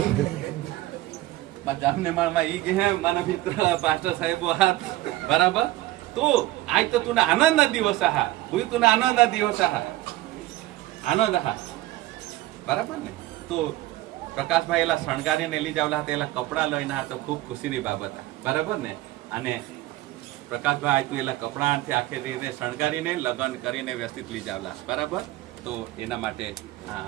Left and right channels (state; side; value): quieter; left; 16.8 dB